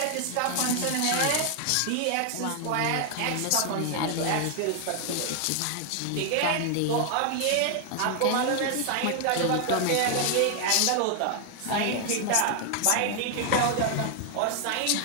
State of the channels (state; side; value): different; both; correlation 0.00